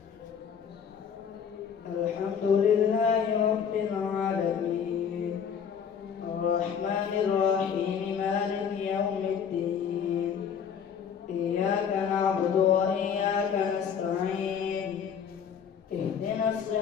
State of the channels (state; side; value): quieter; right; 7.4 dB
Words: الحمد لله رب العالمين الرحمن الرحيم مالك يوم الدين إياك نعبد وإياك نستعين اهدنا